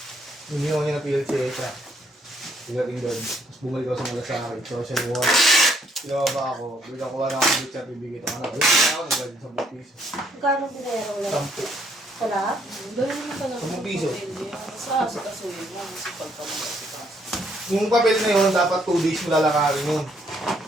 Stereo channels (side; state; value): both; normal; correlation 0.69